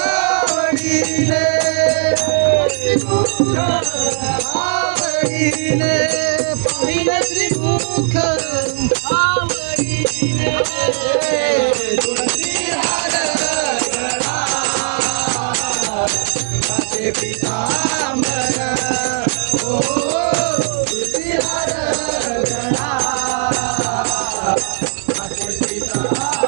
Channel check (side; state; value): left; silent; digital silence